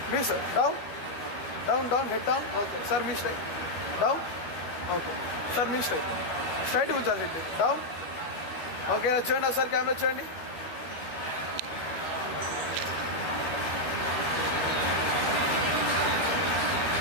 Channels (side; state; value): right; late; 13 ms